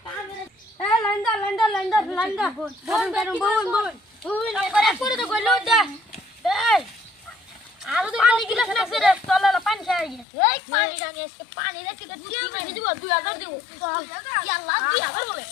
এই লাইন দা গরম বল করে তো গইলো দে এই আরো তো পানি গিলাস লাগছে রে তলালা পানি খাই এই পানি জানি আজকে পানি রাখি তো কি মারি দিব 2000 দিব ইয়াল্লাহ 2000 বলে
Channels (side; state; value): right; drops out; at 10.2 s